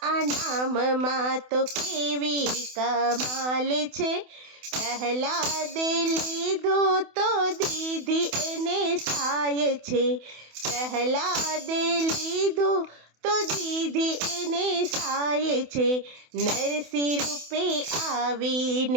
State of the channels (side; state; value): left; late; 28 ms